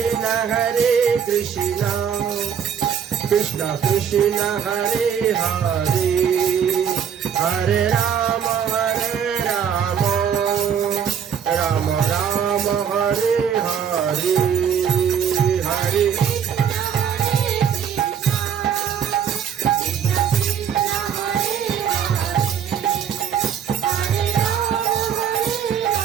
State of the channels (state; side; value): quieter; left; 8.0 dB